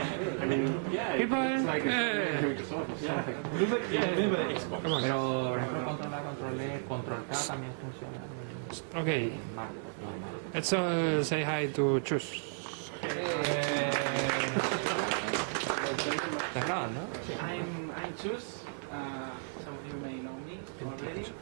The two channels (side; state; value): left; silent; 55 dB below the other